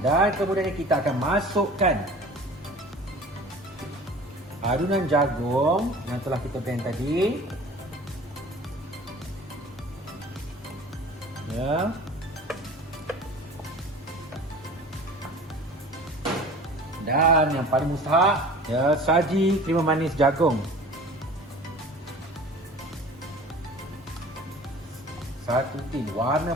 Dan kemudian kita akan masukkan adunan jagung yang telah kita blend tadi. Ya. Dan yang paling mustahak ya, saji krema manis jagung. 1 tin.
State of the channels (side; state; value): both; normal; correlation 0.42